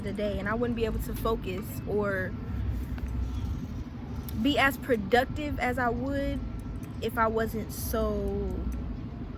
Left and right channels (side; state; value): both; identical; correlation 1.00